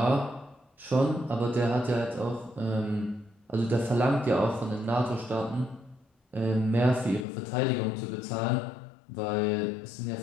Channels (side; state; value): right; drops out; at 7.2 s